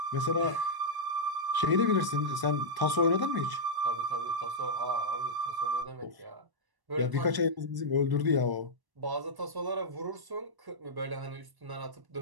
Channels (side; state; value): left; late; 1.1 ms